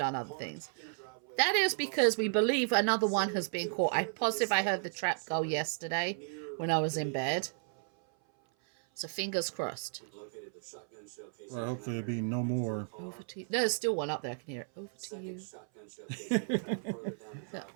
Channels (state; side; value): silent; left; 55 dB below the other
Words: other things. That is because we believe another one has been caught. I'm positive I heard the trap go yesterday when I was in bed. So fingers crossed. Well, hopefully there'll be no more. Over to you. There's still one up there. I can hear it. Over to you. Look,